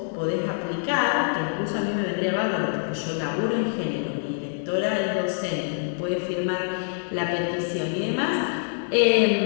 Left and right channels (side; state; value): right; silent; digital silence